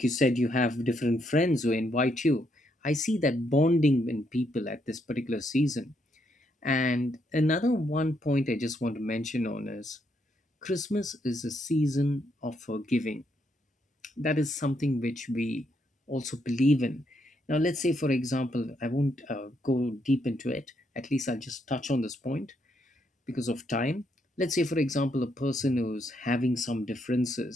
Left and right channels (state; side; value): normal; both; correlation 0.76